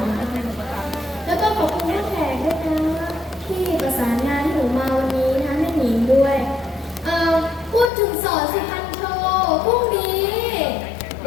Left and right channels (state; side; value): drops out; right; at 7.9 s